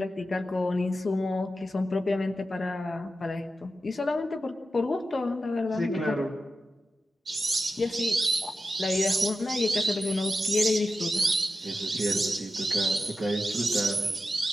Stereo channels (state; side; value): normal; both; correlation 0.91